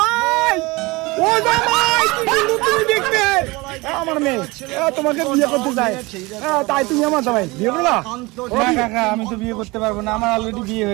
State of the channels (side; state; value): left; quieter; 23.4 dB